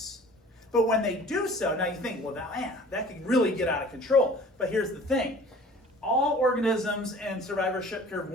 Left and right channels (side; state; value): both; normal; correlation 0.46